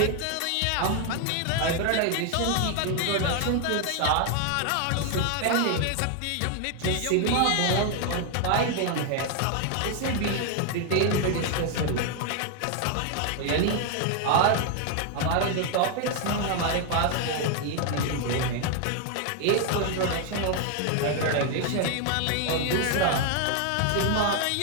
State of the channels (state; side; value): different; both; correlation 0.00